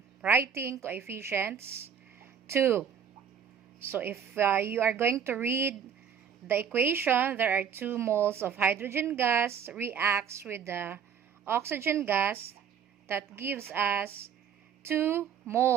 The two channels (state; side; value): quieter; left; 7.6 dB